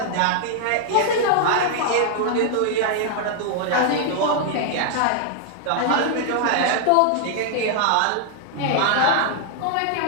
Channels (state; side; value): different; both; correlation 0.00